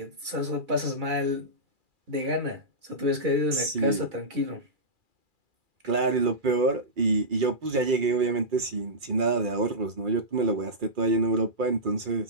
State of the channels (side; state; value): left; late; 2.4 ms